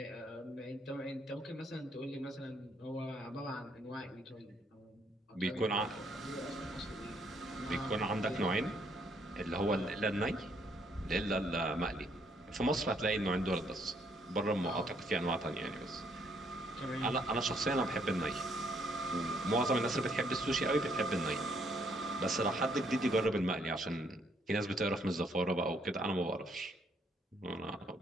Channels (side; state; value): both; normal; correlation 0.69